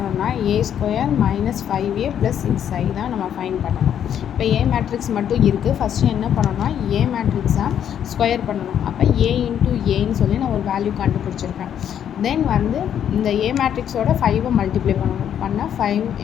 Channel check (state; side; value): quieter; right; 9.4 dB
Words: A² - 5A + 6I தான் நம்ம ஃபைன் பண்ணணும். இப்போ A மேட்ரிக்ஸ் மட்டும் இருக்குது. ஃபஸ்ட்டு என்ன பண்ணணும்னா A மேட்ரிக்ஸாக ஸ்கொயர் பண்ணணும். அப்போ A × Aன்னு சொல்லி நான் ஒரு வேல்யூ கண்டுபிடிச்சிருக்கேன். தென் வந்து இந்த A மேட்ரிக்ஸோட 5 மல்டிப்ளை பண்ணால் 5